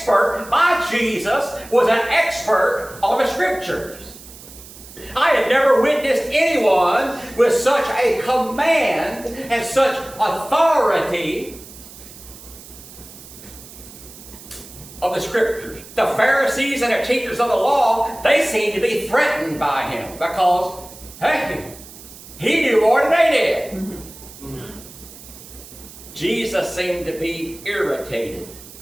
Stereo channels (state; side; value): noise; right; hiss, 18 dB below the sound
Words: my Jesus was an expert on the scriptures. I had never witnessed anyone with such a command and such authority of the scriptures. The Pharisees and the teachers of the law, they seemed to be threatened by him because, hey, he knew more than they did. Jesus seemed to be irritated.